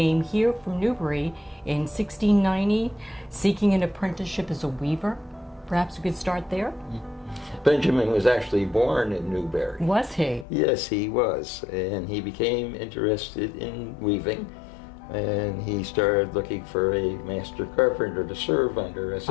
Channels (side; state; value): right; drops out; at 10.5 s